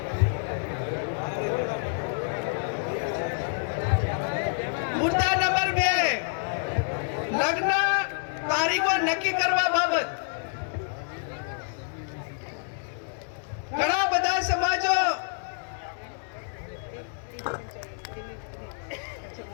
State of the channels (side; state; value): right; silent; 59 dB below the other